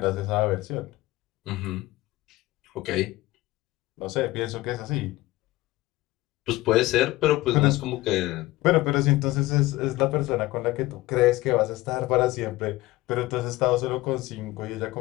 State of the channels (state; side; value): quieter; right; 18.3 dB